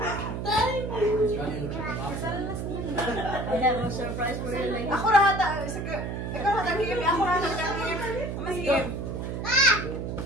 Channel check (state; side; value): noise; right; hum, 4 dB below the sound